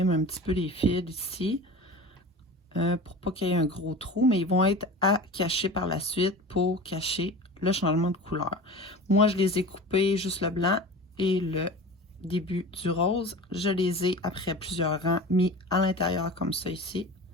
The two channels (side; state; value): both; normal; correlation 0.35